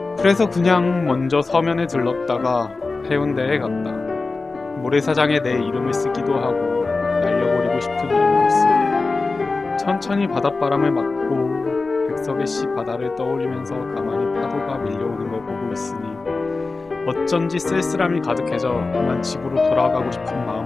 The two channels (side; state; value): right; quieter; 3.7 dB